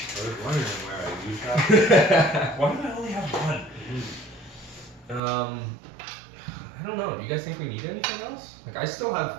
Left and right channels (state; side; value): drops out; left; at 5.2 s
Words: I was wondering where I used that. Why do I only have one? I don't know. Do you guys think we need anything else? Like I still